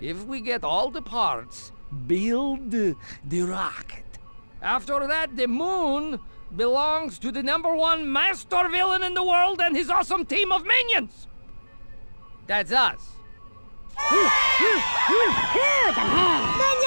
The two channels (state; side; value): inverted; both; correlation -1.00